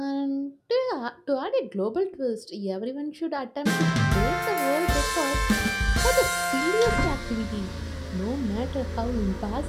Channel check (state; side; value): identical; both; correlation 1.00